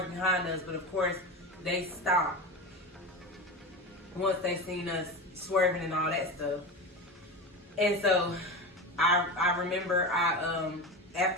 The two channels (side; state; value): both; normal; correlation 0.24